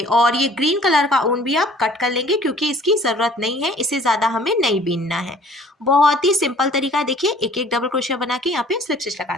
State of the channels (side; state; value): both; normal; correlation 0.53